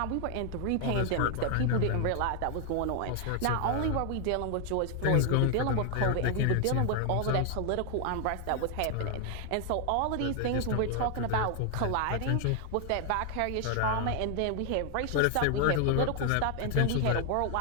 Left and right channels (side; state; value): both; different; correlation 0.00